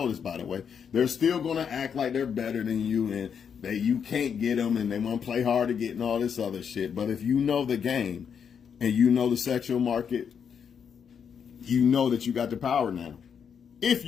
this, by the way. They're still going to act like they're better than you and you can't get them and they want to play hard to get and all this other shit. But if you know the game and you know the sexual market, you know that you got the power now.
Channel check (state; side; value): quieter; right; 7.2 dB